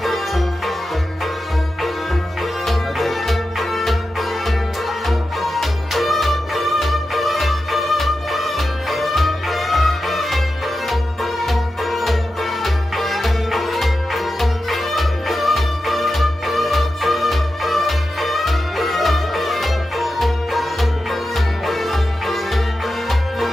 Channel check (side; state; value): both; normal; correlation 0.91